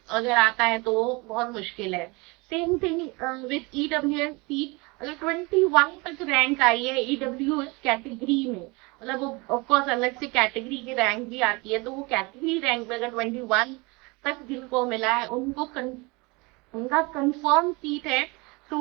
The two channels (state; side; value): quieter; left; 26.5 dB